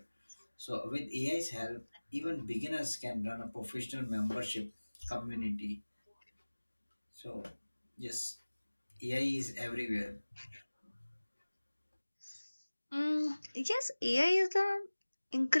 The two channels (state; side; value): inverted; both; correlation -1.00